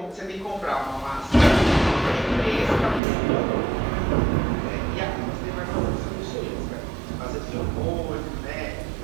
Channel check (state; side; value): drops out; left; at 3.0 s